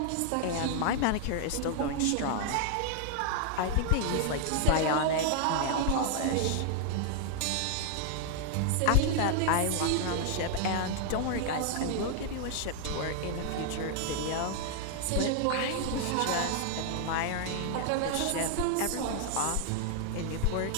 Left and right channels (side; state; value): both; different; correlation 0.00